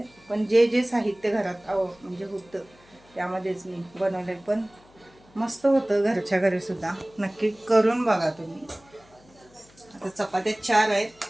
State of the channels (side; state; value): left; noise; hum, 28 dB below the sound